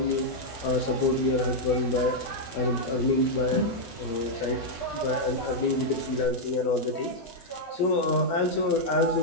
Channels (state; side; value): late; right; 12 ms